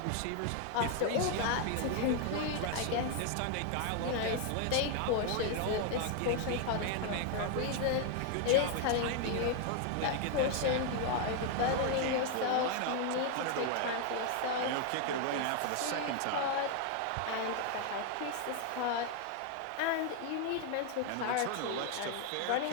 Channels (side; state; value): both; different; correlation 0.00